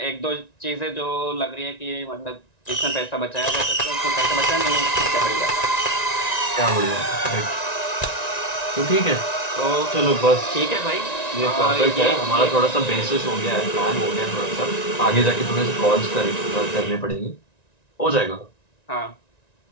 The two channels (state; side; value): late; right; 1.9 ms